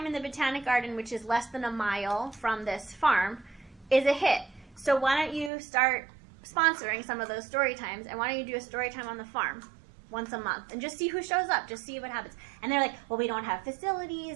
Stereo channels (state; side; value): drops out; left; at 5.5 s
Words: in the Botanic Garden, which is less than a mile from this farm, is a hit. So why don't you start sponsoring some of those story times, and why don't you do a story time on the farm once a month and just see who shows up, just see what happens. And they're like, well, we don't have